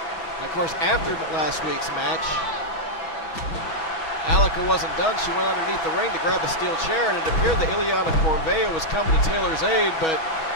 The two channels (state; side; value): late; right; 6.2 ms